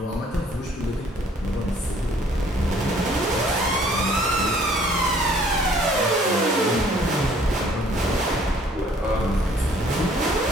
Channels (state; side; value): normal; both; correlation 0.58